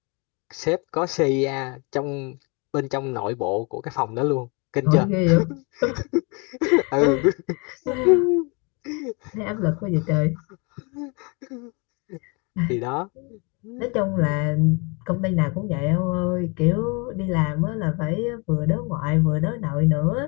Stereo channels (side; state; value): right; quieter; 31.3 dB